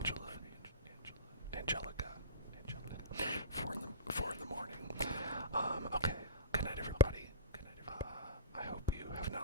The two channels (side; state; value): both; inverted; correlation -0.30